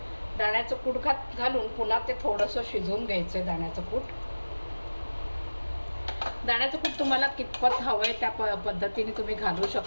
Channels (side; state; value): both; inverted; correlation -1.00